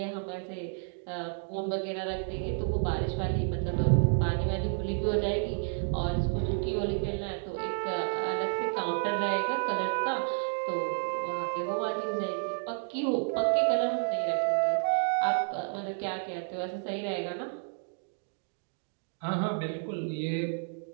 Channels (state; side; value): silent; left; 57 dB below the other